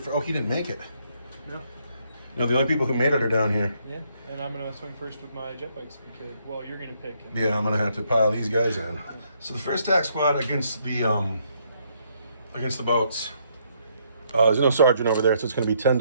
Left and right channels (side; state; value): both; inverted; correlation -0.72